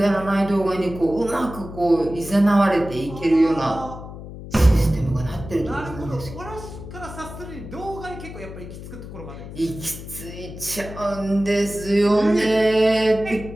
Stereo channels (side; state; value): left; noise; hum, 12 dB below the sound